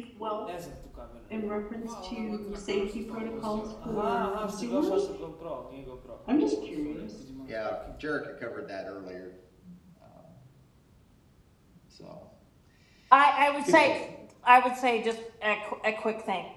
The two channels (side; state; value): both; identical; correlation 1.00